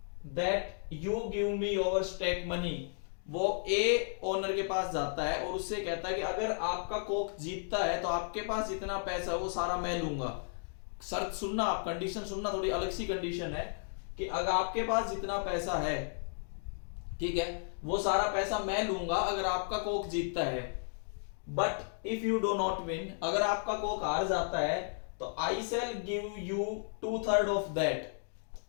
that you give me your stake money. वो ए ओनर के पास जाता है और उससे कहता है कि अगर आपका कॉक जीतता है तो आपके पास जितना पैसा है वो सारा मैं लूंगा। शर्त सुनना आप, कंडीशन सुनना, थोड़ी अलग सी कंडीशन है कि अगर आपके पास जितना पैसा है, ठीक है, वो सारा पैसा मैं लूंगा अगर आपका कॉक जीतता है। But if you do not win, अगर आपका कॉक हार जाता है तो I shall give you 2/3 of that.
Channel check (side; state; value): right; silent; digital silence